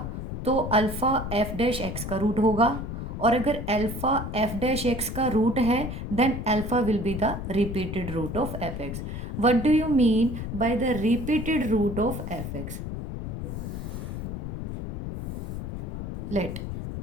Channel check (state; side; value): noise; left; rumble, 6 dB below the sound